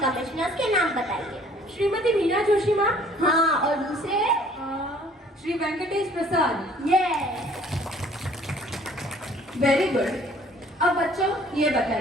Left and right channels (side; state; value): both; normal; correlation 0.56